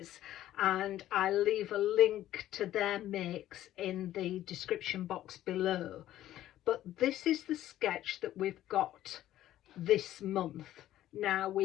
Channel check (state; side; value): quieter; right; 13.3 dB